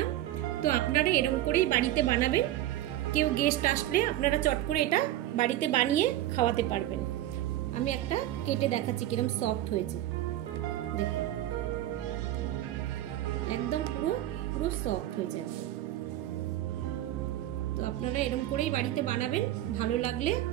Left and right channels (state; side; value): quieter; left; 13.8 dB